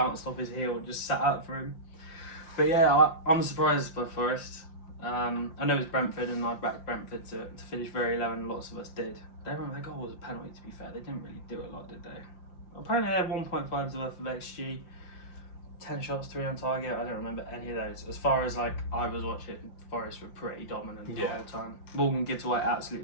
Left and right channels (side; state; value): right; late; 5.7 ms